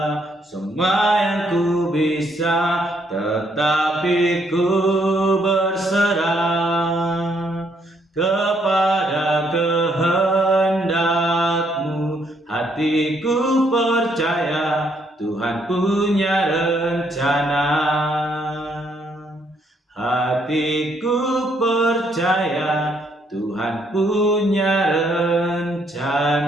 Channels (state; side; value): normal; both; correlation 0.71